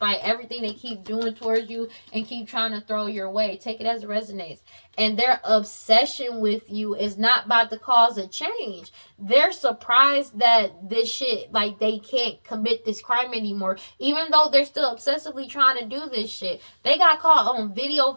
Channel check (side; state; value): both; inverted; correlation -1.00